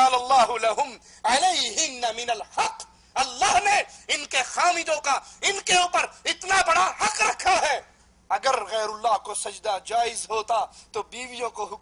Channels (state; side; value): identical; both; correlation 1.00